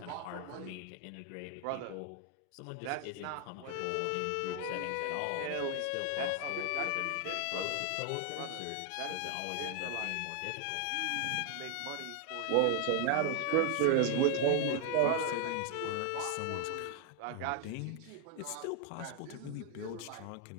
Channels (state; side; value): different; both; correlation 0.00